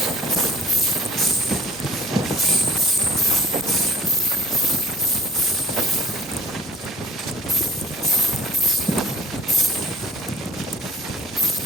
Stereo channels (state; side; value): normal; both; correlation 0.49